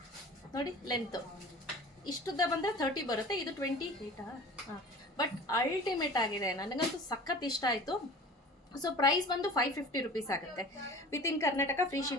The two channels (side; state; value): both; normal; correlation 0.41